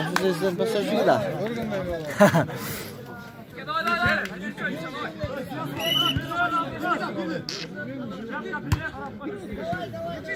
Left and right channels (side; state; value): both; identical; correlation 1.00